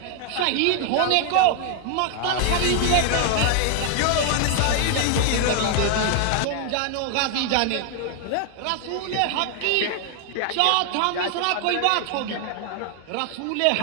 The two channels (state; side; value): different; both; correlation 0.00